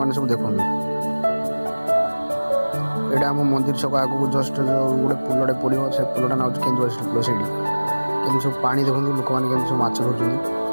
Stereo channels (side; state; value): both; inverted; correlation -1.00